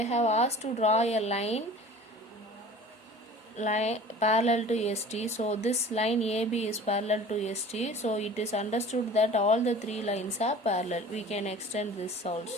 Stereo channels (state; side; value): normal; both; correlation 0.43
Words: have asked to draw a line parallel to ST. So this line AB is parallel to ST. So it is understood that all the three lines are parallel. We can extend this